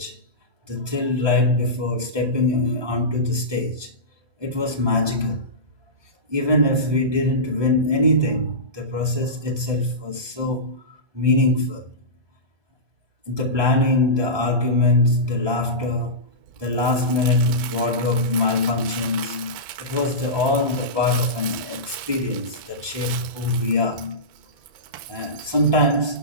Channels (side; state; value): left; late; 1.2 ms